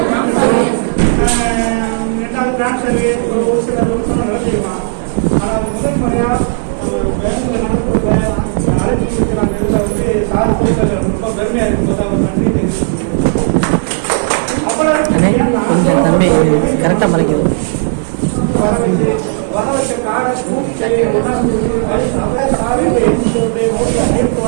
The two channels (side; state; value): left; silent; 68 dB below the other